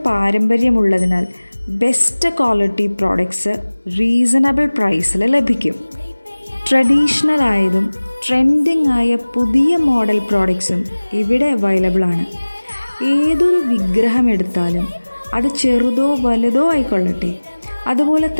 പാരമ്പര്യമുള്ളതിനാൽ ബെസ്റ്റ് ക്വാളിറ്റി പ്രോഡക്ട്സ് റീസണബിൾ പ്രൈസിൽ ലഭിക്കും. ട്രഡീഷണൽ ആയതും ട്രെൻഡിങ് ആയ പുതിയ മോഡൽ പ്രോഡക്ട്സും ഇവിടെ അവൈലബിൾ ആണ്. ഏതൊരു വിഗ്രഹം എടുത്താലും അത് ചെറുതോ വലുതോ ആയിക്കൊള്ളട്ടെ, അതുപോലെ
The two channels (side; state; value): both; inverted; correlation -1.00